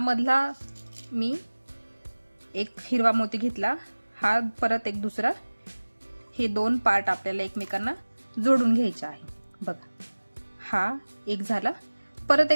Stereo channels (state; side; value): inverted; both; correlation -1.00